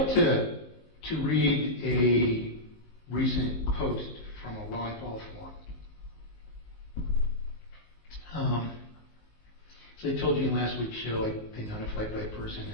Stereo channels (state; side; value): late; right; 19 ms